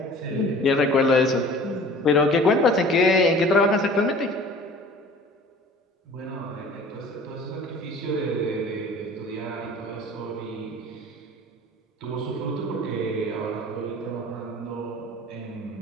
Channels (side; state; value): both; normal; correlation 0.45